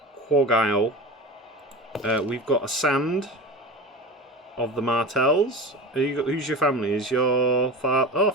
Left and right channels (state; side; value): normal; both; correlation 0.31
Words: Quagile. We've got a Sand of the Martells. Who's your family? Is your father? Oh,